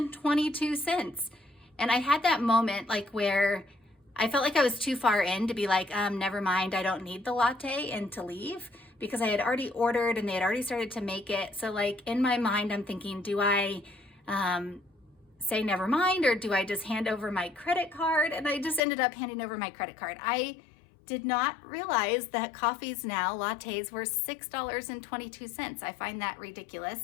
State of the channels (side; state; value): right; drops out; at 18.8 s